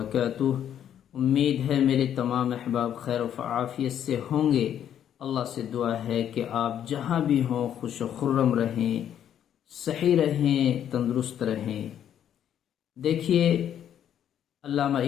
امید ہے میرے تمام احباب خیر و عافیت سے ہوں گے۔ اللہ سے دعا ہے کہ آپ جہاں بھی ہوں خوش و خرم رہیں، صحیح رہیں، تندرست رہیں۔ دیکھیے، علامہ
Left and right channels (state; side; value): quieter; right; 9.9 dB